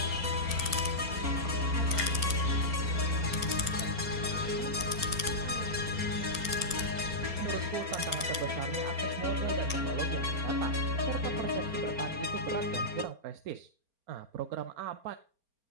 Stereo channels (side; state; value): left; late; 4.4 ms